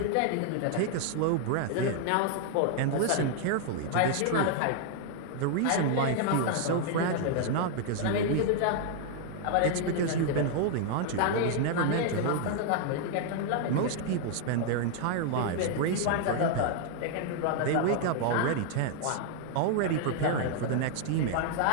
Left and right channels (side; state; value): both; different; correlation 0.00